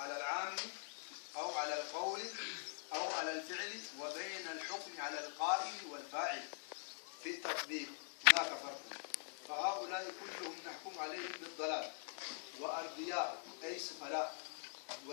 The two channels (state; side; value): silent; right; digital silence